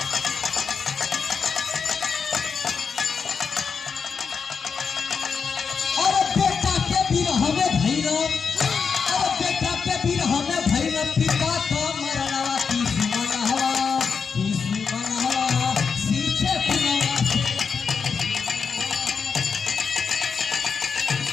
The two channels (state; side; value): quieter; right; 5.8 dB